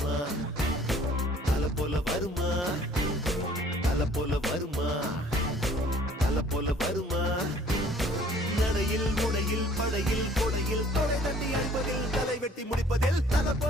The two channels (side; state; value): both; normal; correlation 0.55